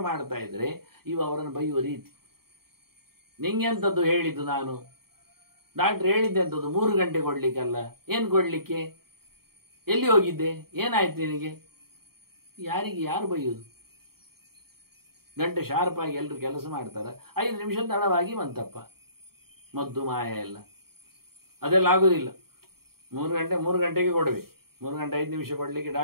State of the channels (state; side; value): late; left; 0.94 ms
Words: ಮಾಡ್ತಾ ಇದ್ರೆ ಇವ ಅವರನ್ನು ಬೈಯುವ ರೀತಿ. ನಿಂಗೆಂಥದ್ದು ಹೇಳಿದ್ದು ನಾನು, ಡಾಕ್ಟ್ರ್ ಹೇಳಿದ್ದೆ ಅಂತದ್ದು 3 ಗಂಟೆ ಕೊಡ್ಲಿಕ್ಕಲ್ಲ. ಏನು ಕೊಡ್ಲಿಕ್ಕೆ? ಎಲ್ಲಿ ಹೋಗಿದ್ದೆ? ಏನಾಯ್ತು ನಿನಗೆ? ಯಾರು ಬೈಯೋದು? ಗಂಟೆ ಶಾರ್ಪಾಗಿ ಎಲ್ಲರೂ ಕೆಲಸ ಮಾಡ್ತಾರೆ, 5 ನಿಮಿಷ ತಡವಾಗಿ ಬಂತಪ್ಪ, ಮದ್ದು ಮಾಯ ಎಲ್ಲ. ಅದೆಲ್ಲ ಆಗೋದಿಲ್ಲ. 3 ಗಂಟೆಗೆ ಕೊಡಬೇಕು. 3 ಗಂಟೆ 5 ನಿಮಿಷ ಕೊಡಲಿಕ್ಕೆ